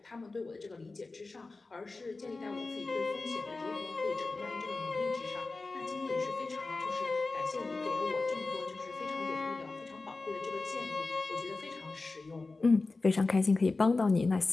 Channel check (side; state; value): right; quieter; 3.6 dB